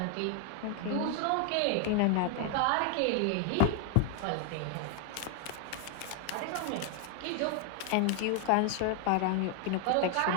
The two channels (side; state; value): both; different; correlation 0.01